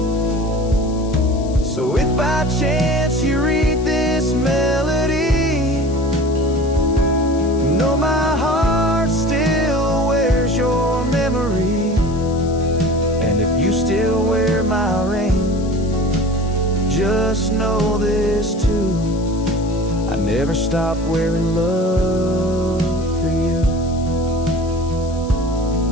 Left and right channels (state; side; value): noise; left; hiss, 21 dB below the sound